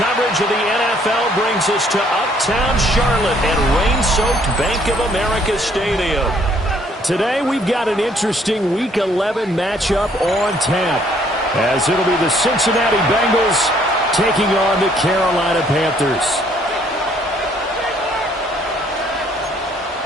of the NFL brings us to Uptown Charlotte and rain-soaked Bank of America Stadium. Today we've got an interesting Week 11 matchup on tap, as it'll be the Cincinnati Bengals taking on the Carolina Panthers.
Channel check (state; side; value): normal; both; correlation 0.64